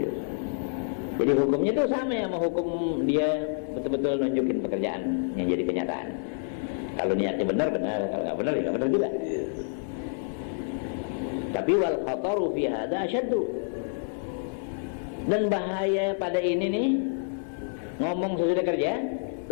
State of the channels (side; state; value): right; silent; digital silence